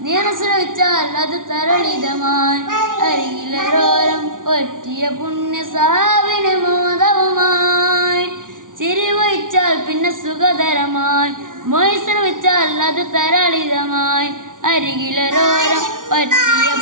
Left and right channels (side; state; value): left; late; 0.88 ms